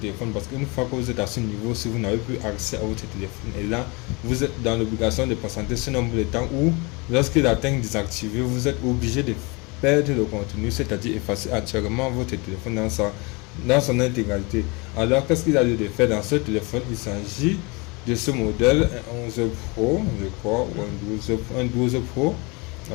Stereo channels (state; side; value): quieter; right; 27.9 dB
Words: parce qu'une fois que vous êtes à ce niveau, si vous n'avez plus accès à votre téléphone, et là vous êtes dans l'obligation de patienter ce nombre de temps où, lorsqu'il atteint désactivé, vous êtes obligé de perdre le contenu, c'est-à-dire effacer entièrement votre téléphone dans son intégralité. Alors qu'est-ce qu'il a lieu de faire dans ce téléphone? Il s'agit de ce modèle, un 11 Pro, je crois, ou un 12 Pro,